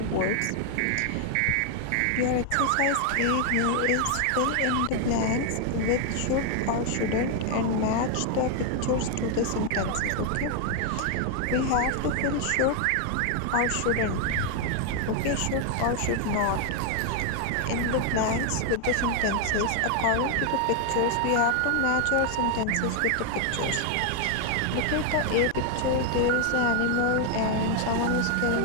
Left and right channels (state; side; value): different; both; correlation 0.01